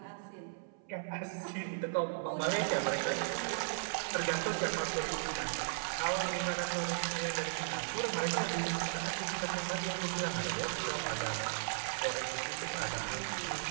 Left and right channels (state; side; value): silent; left; 54 dB below the other